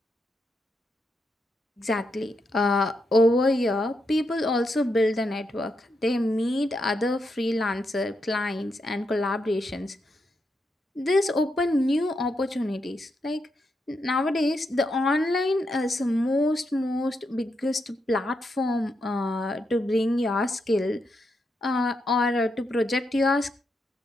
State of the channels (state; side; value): normal; both; correlation 0.82